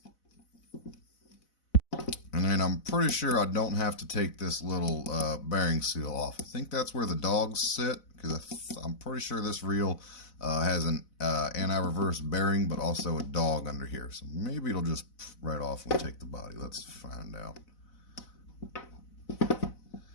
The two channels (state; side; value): late; right; 4.0 ms